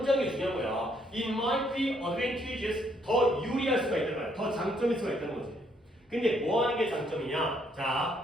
게 중요한 거야. It might be advantageous, 더 유리할 수가 있다는 거야. 더 장점일 수가 있다는 거지. 근데 뭐 하는 게 장점이냐?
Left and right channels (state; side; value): normal; both; correlation 0.70